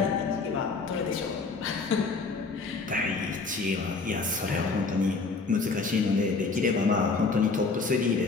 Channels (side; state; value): right; quieter; 4.2 dB